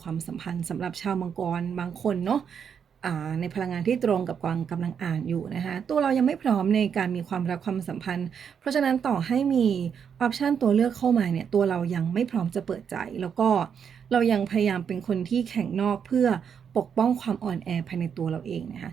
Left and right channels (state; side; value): quieter; left; 7.4 dB